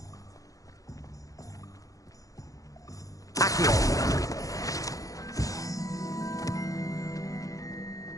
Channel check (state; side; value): late; right; 0.17 ms